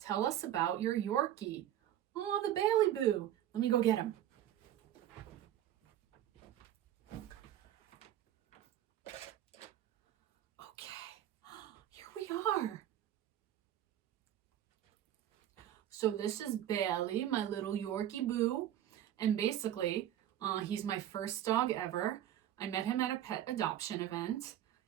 us about your Yorkie. Oh, the Bailey Boo. Let me go get him. Okay, here we are. So this is Bailey, my little Yorkie Boo. And basically, he's my first dog ever. I met him at a pet adoption event.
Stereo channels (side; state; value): left; quieter; 11.9 dB